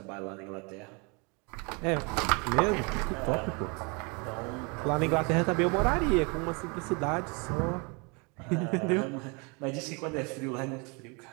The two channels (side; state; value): left; quieter; 31.4 dB